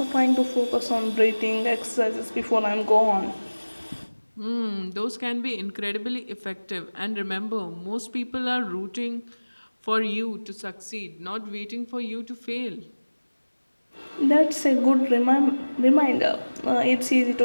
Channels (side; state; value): both; inverted; correlation -1.00